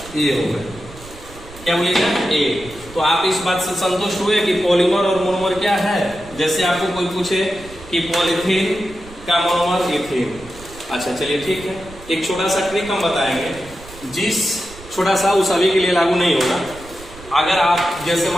A होगा। क्या बोलिएगा, A। तो आप इस बात से संतुष्ट हुए कि पॉलीमर और मोनोमर क्या है। जैसे आपको कोई पूछे कि पॉलीथीन का मोनोमर इथीन, अच्छा चलिए ठीक है, एक छोटा सा ट्रिक हम बताएंगे, जिस छोटा सा उस सभी के लिए लागू नहीं होगा। अगर आप जैसे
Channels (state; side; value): noise; right; rumble, 18 dB below the sound